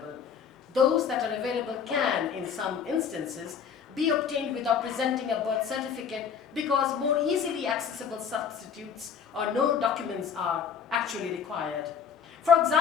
Those that are available can, in some instances, be obtained without presenting a birth certificate because more easily accessible substitutes or no documents are actually required. For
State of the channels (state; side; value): quieter; right; 7.1 dB